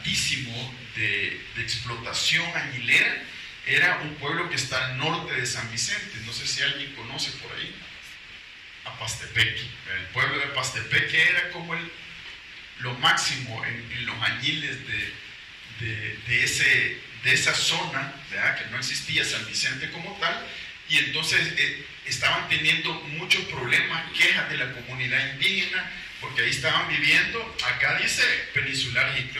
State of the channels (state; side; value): identical; both; correlation 1.00